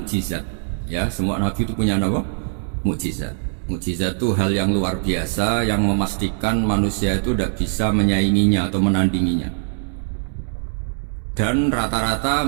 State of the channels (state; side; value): silent; left; 64 dB below the other